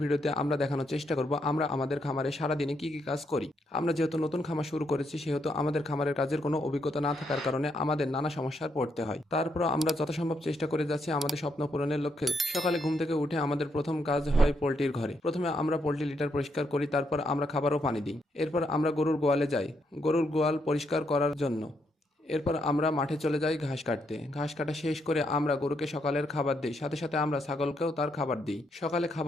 আমরা দেখানোর চেষ্টা করব আমরা আমাদের খামারে সারাদিনে কি কি কাজ করি। আমরা যেহেতু নতুন খামার শুরু করেছি সেহেতু আমাদের খামারের কাজের কোনো অভিজ্ঞতা না থাকার কারণে আমাদের নানা সমস্যায় পড়তে হয়। তারপরও আমরা যথাসম্ভব চেষ্টা করে যাচ্ছি আমাদের স্বপ্ন পূরণের লক্ষ্যে। সকালে ঘুম থেকে উঠে আমাদের প্রথম কাজ হয় পোল্ট্রির ঘরে। প্রথমে আমরা পোল্ট্রি লিটার পরিষ্কার করি, তারপর আমরা খাবার ও পানি দিই। এরপর আমরা গরুর গোয়ালে যাই গরুর গোয়াল পরিষ্কার করার জন্য। এরপর আমরা মাঠে চলে যাই ঘাস কাটতে। ঘাস কাটা শেষ করে আমরা গরুকে সকালের খাবার দিই, সাথে সাথে আমরা ছাগলকেও তার খাবার দিই। সকালে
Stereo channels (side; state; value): both; normal; correlation 0.77